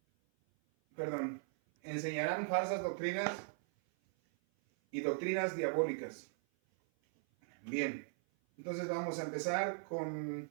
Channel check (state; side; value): silent; left; 52 dB below the other